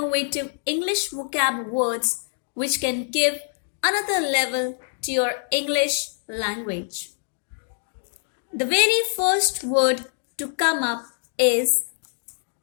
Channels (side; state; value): right; silent; digital silence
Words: English vocab words which can give another level to your English language. The very first word to come up is